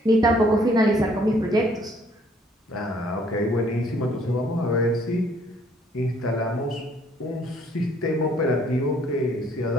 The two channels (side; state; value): both; normal; correlation 0.62